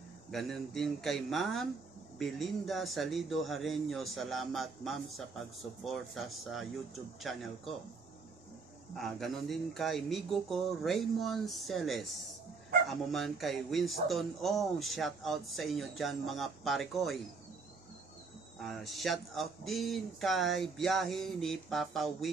Ganon din kay Ma'am Belinda Salido Hareño. Salamat ma'am sa pagsuporta sa YouTube channel ko. Ganon din kay migo ko Raymond Celes. Amo man kay Winston Ong. Shoutout sa inyo dyan mga pare Koy. Shout out din kay biyahe ni Papa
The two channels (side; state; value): left; quieter; 4.5 dB